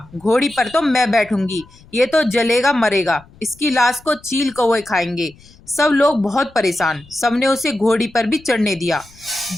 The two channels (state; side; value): noise; left; rumble, 25 dB below the sound